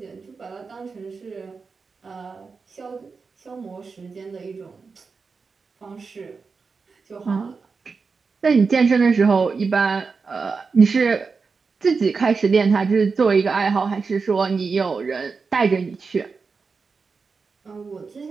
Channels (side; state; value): left; quieter; 4.8 dB